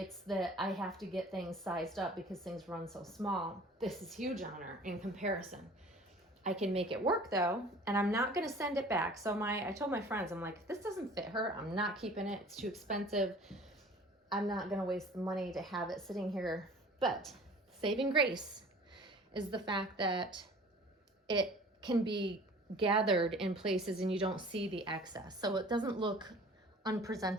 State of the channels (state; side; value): normal; both; correlation 0.46